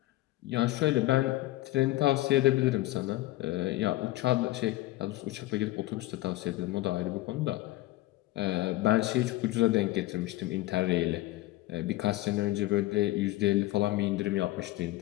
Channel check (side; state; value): right; quieter; 17.7 dB